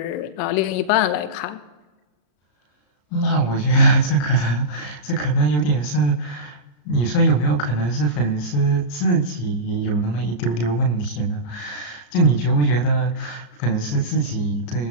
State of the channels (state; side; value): late; right; 34 ms